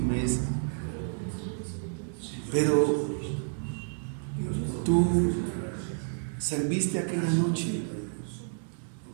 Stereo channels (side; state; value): left; silent; digital silence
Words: Pero tú serviste aquella noche,